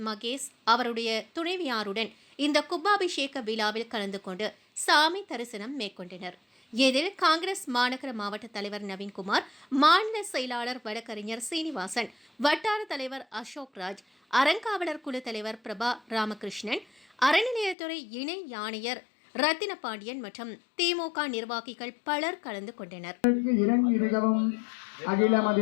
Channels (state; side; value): drops out; right; at 17.8 s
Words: மகேஷ் அவருடைய துணைவியாருடன் இந்த கும்பாபிஷேக விழாவில் கலந்து கொண்டு சாமி தரிசனம் மேற்கொண்டனர். இதில் காங்கிரஸ் மாநகர மாவட்ட தலைவர் நவீன்குமார், மாநில செயலாளர் வழக்கறிஞர் சீனிவாசன், வட்டார தலைவர் அசோக் ராஜ், அறங்காவலர் குழு தலைவர் பிரபா ராமகிருஷ்ணன், அறநிலையத்துறை இணை ஆணையர் ரத்தின பாண்டியன் மற்றும் திமுக நிர்வாகிகள் பலர் கலந்து கொண்டனர்.